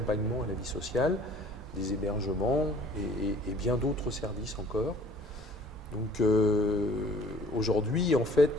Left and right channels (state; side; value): normal; both; correlation 0.53